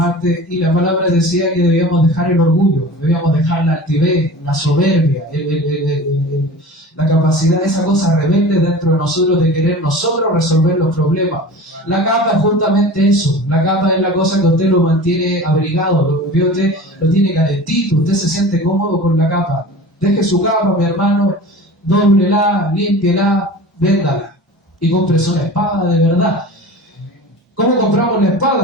Y la palabra decía que debíamos dejar el orgullo, debíamos dejar la altivez, la soberbia, la capacidad, esa cosa rebelde dentro de nosotros de querer nosotros resolver los problemas. La capa es justamente eso. La capa es la cosa que usted lo mantiene abrigado, usted lo tiene calentito, usted se siente cómodo con la capa. Deje su capa, mi hermano, dóblela, límpiela, véndala y cómprese una espada de verdad. ¿Cómo compramos la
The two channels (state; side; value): normal; both; correlation 0.37